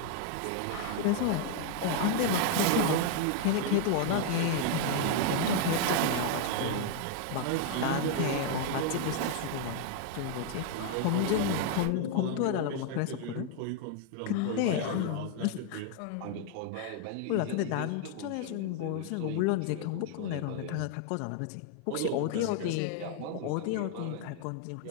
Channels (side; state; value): both; different; correlation 0.00